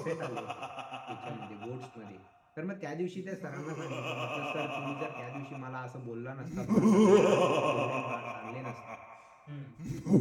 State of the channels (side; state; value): both; identical; correlation 1.00